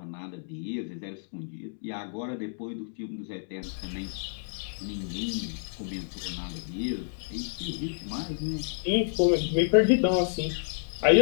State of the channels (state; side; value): silent; right; digital silence